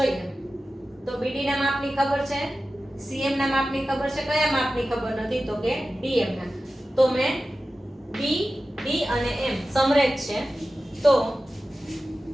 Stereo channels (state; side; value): normal; both; correlation 0.94